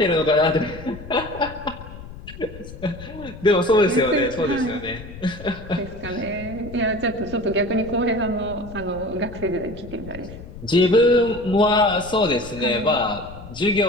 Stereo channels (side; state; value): left; noise; rumble, 14 dB below the sound